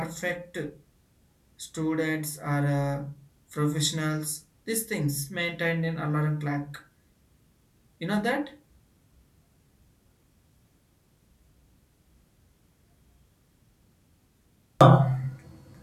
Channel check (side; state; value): both; identical; correlation 1.00